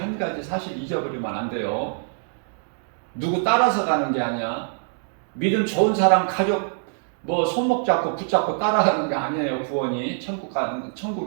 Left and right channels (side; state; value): left; silent; digital silence